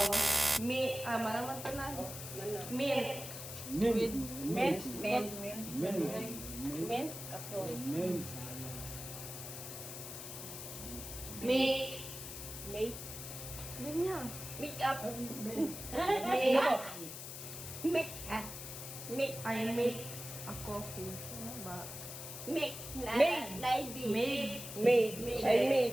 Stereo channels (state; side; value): noise; left; hiss, 9 dB below the sound